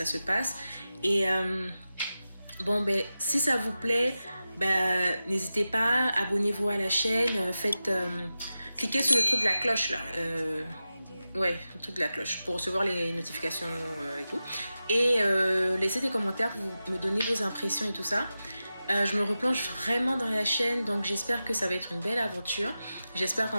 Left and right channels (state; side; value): inverted; both; correlation -0.93